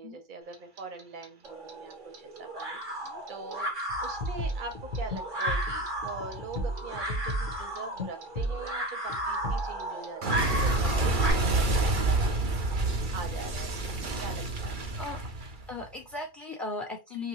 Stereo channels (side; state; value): left; late; 2.3 ms